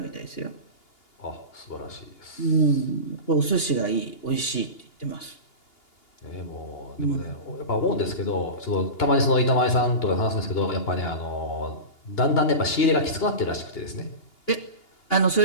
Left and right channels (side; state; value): right; late; 2.8 ms